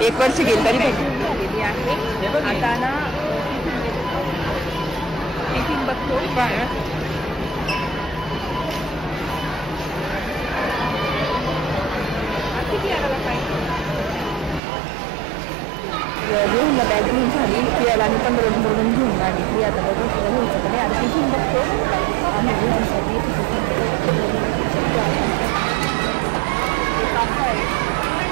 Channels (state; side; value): drops out; left; at 14.6 s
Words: 1 वर्ष गेली तरी झालेली आहे. आता ना टिफिन बघतो. घेऊन बॅग घेऊन झाली फिरायला आणि 15 घेऊन आली. ती आता घ्यायचं का नाही आणि टिफिन बघतो आणि घेण्यासाठी